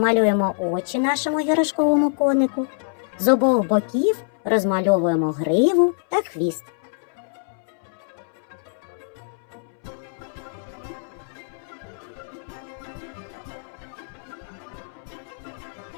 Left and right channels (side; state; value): right; silent; 62 dB below the other